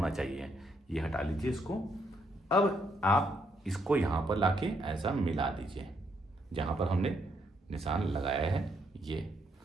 चाहिए। ये हटा लीजिए इसको। अब आप इसको यहाँ पर लाके ऐसा मिला दीजिए जहाँ पर हमने निशान लगाया है ये।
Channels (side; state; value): both; normal; correlation 0.74